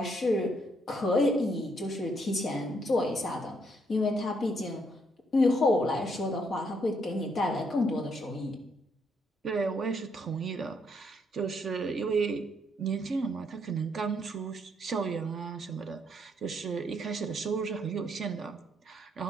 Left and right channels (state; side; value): normal; both; correlation 0.72